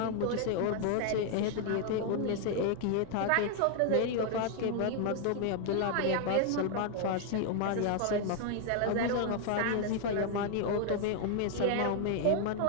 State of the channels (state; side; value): different; both; correlation 0.00